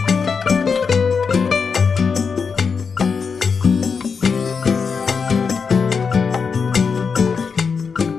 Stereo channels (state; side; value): quieter; right; 5.6 dB